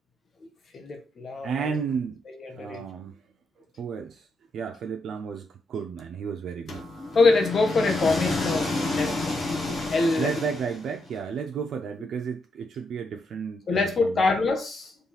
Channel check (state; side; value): normal; both; correlation 0.80